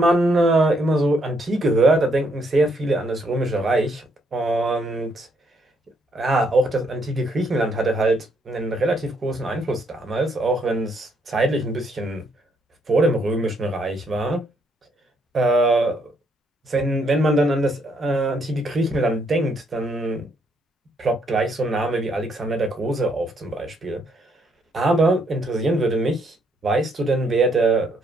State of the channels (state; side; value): normal; both; correlation 0.72